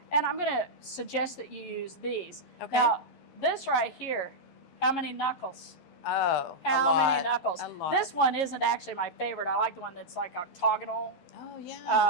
And I'm going to suggest that you use these. Okay. Now, this right here, how many knuckles? Oh, how many knuckles? A lot. This one isn't actually my favorite. I like the one that's like octagonal. Oh,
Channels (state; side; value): late; right; 12 ms